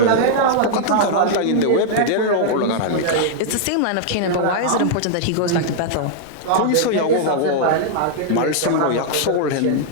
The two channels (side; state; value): both; different; correlation -0.01